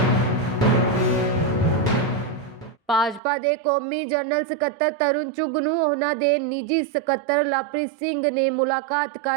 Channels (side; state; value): left; drops out; at 3.2 s